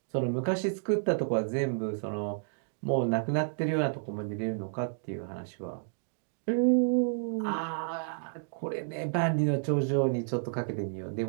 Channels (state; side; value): silent; left; digital silence